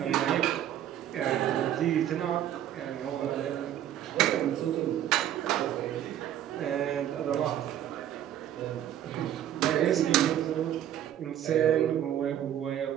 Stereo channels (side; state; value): left; quieter; 11.1 dB